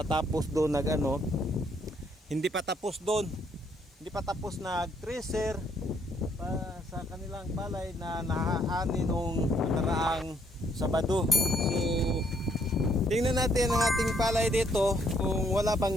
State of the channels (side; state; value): both; normal; correlation 0.70